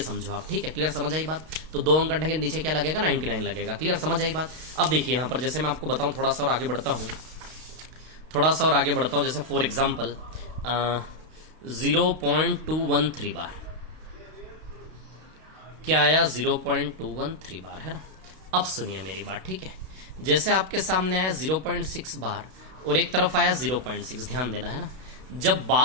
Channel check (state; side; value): late; left; 32 ms